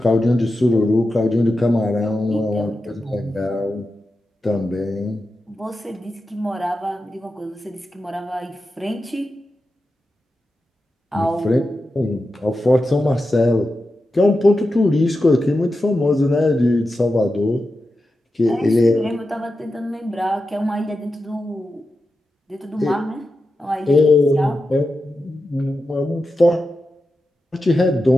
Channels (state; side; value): normal; both; correlation 0.90